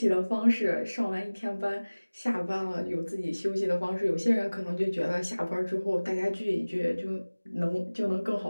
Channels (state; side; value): inverted; both; correlation -1.00